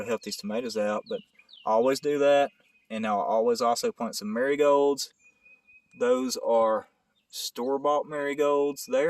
help these tomatoes out. But I always do that, and I'll always also plant some marigolds. Those are store-bought marigolds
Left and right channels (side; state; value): both; identical; correlation 1.00